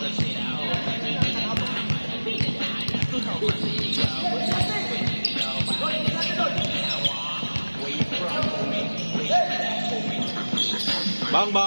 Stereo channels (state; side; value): inverted; both; correlation -1.00